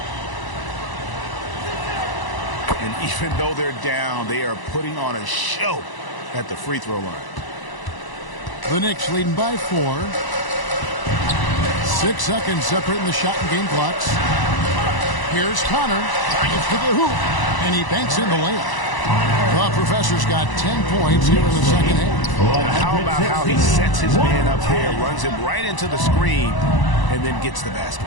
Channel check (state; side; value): late; right; 1.0 ms